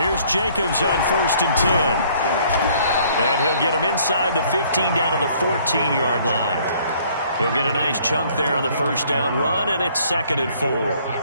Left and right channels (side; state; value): both; inverted; correlation -0.60